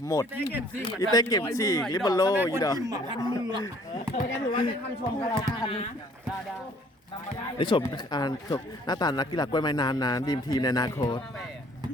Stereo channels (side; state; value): both; normal; correlation 0.58